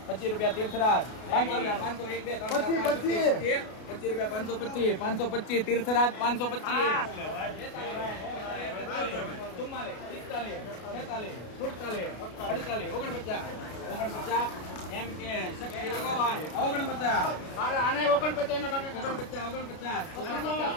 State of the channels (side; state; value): right; late; 33 ms